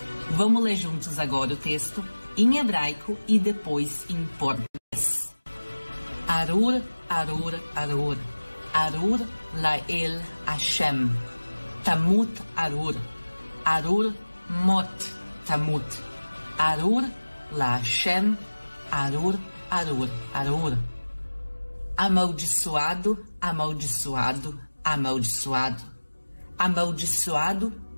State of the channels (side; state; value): both; inverted; correlation -1.00